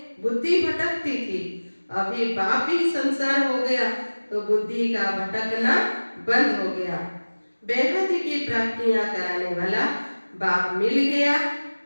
बुद्धि भटकती थी, अभी बाप ही संसार हो गया तो बुद्धि का भटकना बंद हो गया। बेहद की प्राप्तियां कराने वाला बाप मिल गया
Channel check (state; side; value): inverted; both; correlation -1.00